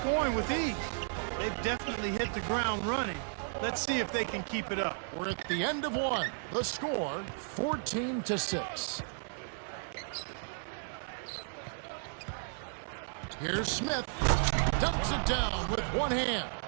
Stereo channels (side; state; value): left; silent; 55 dB below the other